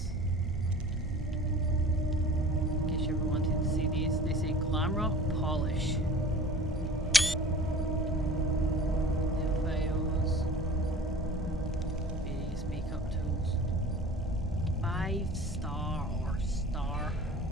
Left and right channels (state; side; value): normal; both; correlation 0.41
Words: In case you ever wanted to see these, they say glam rock polish. Nail files, various makeup tools. 5-star or star.